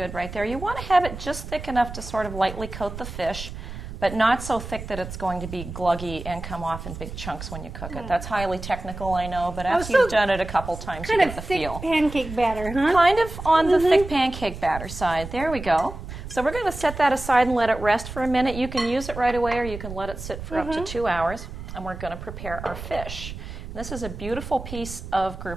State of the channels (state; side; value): noise; right; rumble, 10 dB below the sound